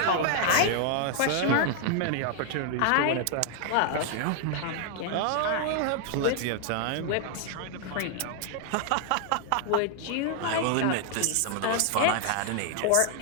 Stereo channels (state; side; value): different; both; correlation 0.00